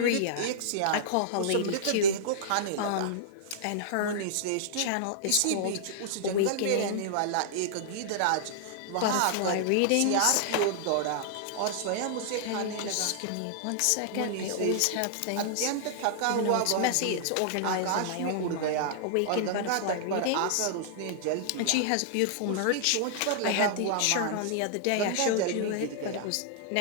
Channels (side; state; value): both; different; correlation -0.01